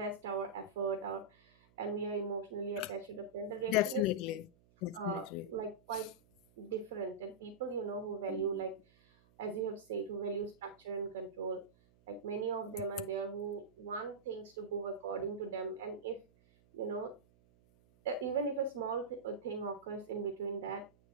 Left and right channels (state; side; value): noise; right; hum, 29 dB below the sound